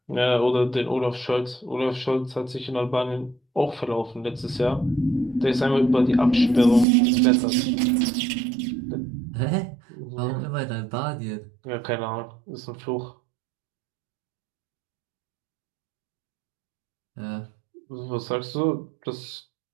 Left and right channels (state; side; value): drops out; left; at 6.9 s